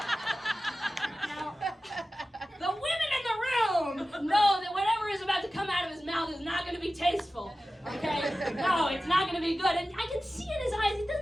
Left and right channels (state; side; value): normal; both; correlation 0.95